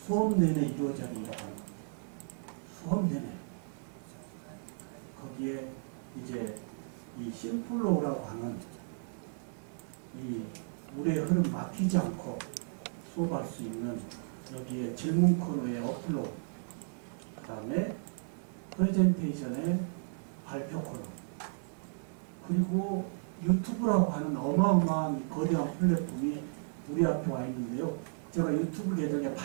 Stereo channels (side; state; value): left; silent; digital silence